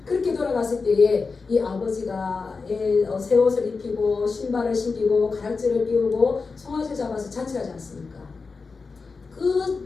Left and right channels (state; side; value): quieter; right; 4.5 dB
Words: 그렇게 돌아갔을 때에 이 아버지가 새 옷을 입히고 신발을 신기고 가락지를 끼우고 송아지를 잡아서 잔치하지 않습니까?